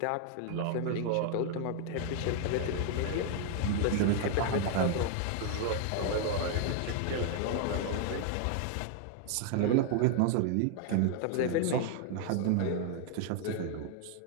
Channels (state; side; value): different; both; correlation 0.00